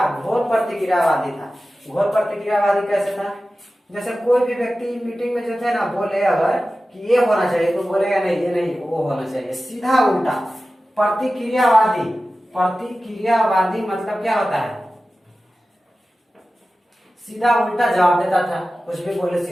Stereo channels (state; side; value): normal; both; correlation 0.95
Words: घोर प्रतिक्रियावादी था। घोर प्रतिक्रियावादी कैसे था? जैसे कोई भी व्यक्ति मीटिंग में जो थे ना बोले अगर कि ये होना चाहिए तो बोलेगा नहीं ये नहीं वो होना चाहिए, सीधा उल्टा। प्रतिक्रियावादी, प्रतिक्रियावादी मतलब क्या होता है? सीधा उल्टा जवाब देता था, कुछ भी बोले